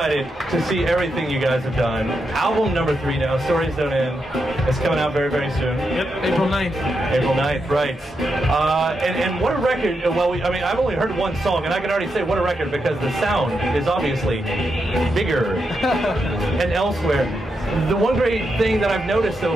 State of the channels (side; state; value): both; normal; correlation 0.84